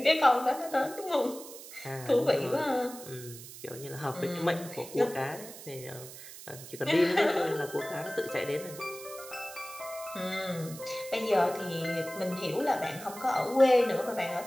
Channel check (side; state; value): right; noise; hiss, 14 dB below the sound